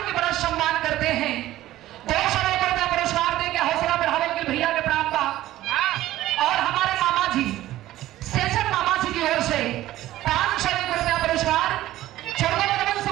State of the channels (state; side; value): quieter; left; 15.0 dB